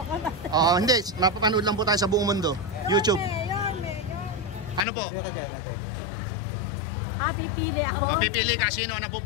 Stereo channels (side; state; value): right; drops out; at 4.9 s